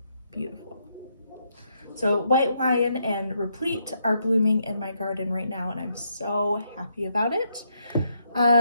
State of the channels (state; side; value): inverted; both; correlation -0.76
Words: beautiful. So White Lion and Replete are blooming in my garden right now, and I'm so happy about it.